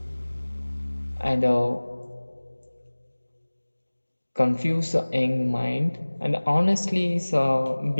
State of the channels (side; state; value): both; inverted; correlation -1.00